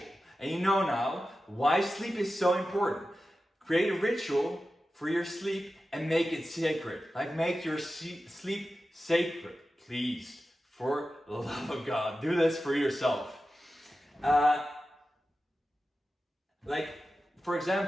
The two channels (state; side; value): normal; both; correlation 0.93